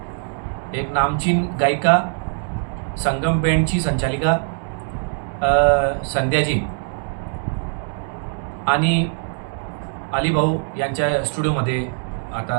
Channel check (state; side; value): silent; left; 64 dB below the other